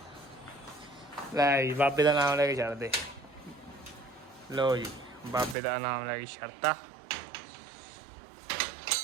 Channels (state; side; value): drops out; left; at 5.6 s